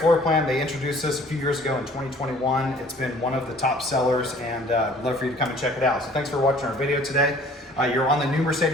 plan. They introduced this a few years ago in 2021. It's been one of the top sellers, and I'd love for you to come and check it out. So thanks for watching our video today. You're on the new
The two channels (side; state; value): both; normal; correlation 0.53